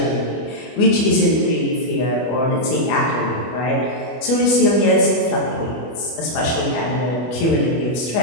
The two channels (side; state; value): right; late; 24 ms